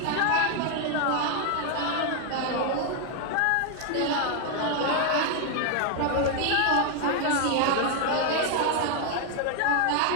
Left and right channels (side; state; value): both; different; correlation 0.01